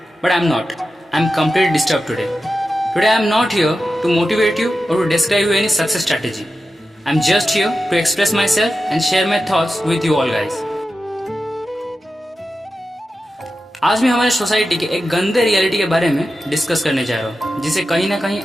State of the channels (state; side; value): normal; both; correlation 0.92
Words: But I'm not. I'm completely disturbed today. Today I'm not here to motivate you or to describe you any success strategy. I'm just here to express myself and share my thoughts with you all guys. आज मैं हमारे सोसाइटी के एक गंदे रियलिटी के बारे में डिस्कस करने जा रहा हूँ, जिसे कहीं ना कहीं